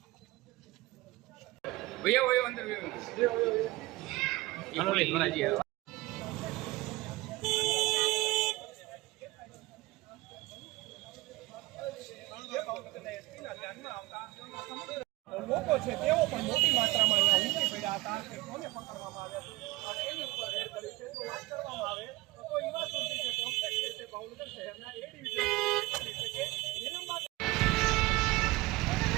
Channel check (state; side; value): quieter; left; 20.5 dB